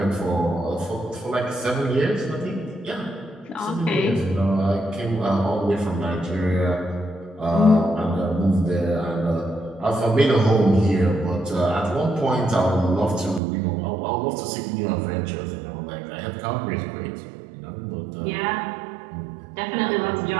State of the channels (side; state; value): left; drops out; at 13.4 s